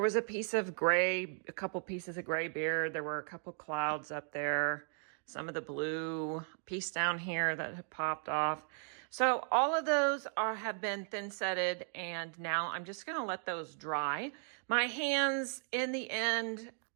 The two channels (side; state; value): left; silent; 54 dB below the other